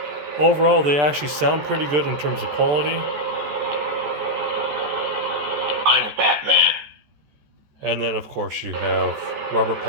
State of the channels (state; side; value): late; left; 14 ms